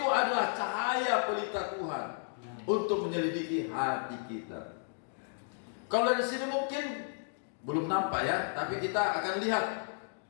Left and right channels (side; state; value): right; silent; digital silence